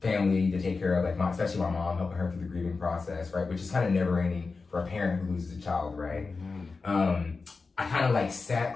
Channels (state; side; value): quieter; right; 4.3 dB